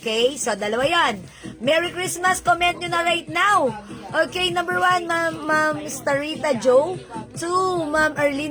So, 2 yan. Merry Christmas. Comment nyo na right now. Okay, number 1, Ma'am Starita Joe. 2, Ma'am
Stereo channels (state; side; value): identical; both; correlation 1.00